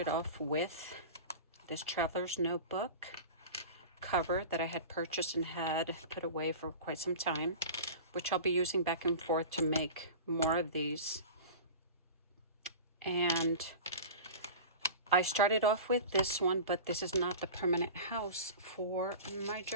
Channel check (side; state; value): both; inverted; correlation -0.33